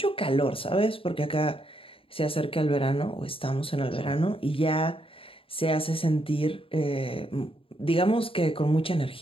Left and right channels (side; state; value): right; late; 0.26 ms